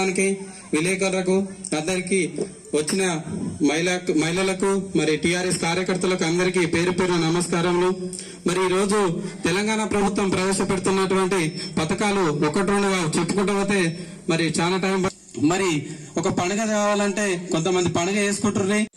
విలేకరులకు, అందరికీ వచ్చిన మహిళలకు, మరి టీఆర్ఎస్ కార్యకర్తలకు అందరికీ పేరు పేరు నమస్కారములు. మరి ఈ రోజు తెలంగాణ ప్రభుత్వం ప్రవేశపెడుతున్నటువంటి పథకాలు ఒకటి రెండుగా చెప్పుకుంటూ పోతే మరి చాలా టైం. మరి ఒక పండుగ కావాలంటే కొంతమంది పండుగ చేసుకుంటుర్రు.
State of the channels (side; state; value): both; identical; correlation 1.00